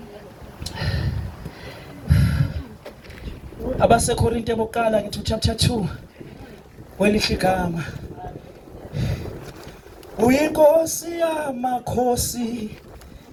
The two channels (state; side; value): identical; both; correlation 1.00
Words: Abasekorinte bokuqala ngithi chapter 2 welihle igama. Uyinkosi yamakhosi,